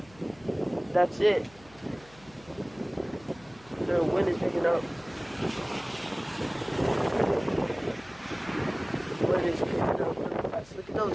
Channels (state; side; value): noise; left; hum, 25 dB below the sound